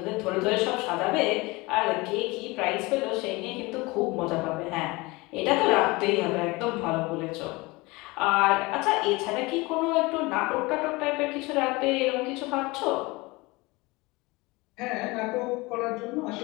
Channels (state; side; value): quieter; right; 23.5 dB